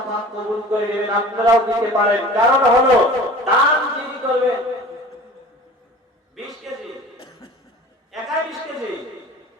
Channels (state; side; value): normal; both; correlation 0.42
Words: পাক কবুল করে নেবেন, আপনারাও দিতে পারেন। কারণ হলো দান যিনি করবেন 20 কেজি, একাই 20 কেজি,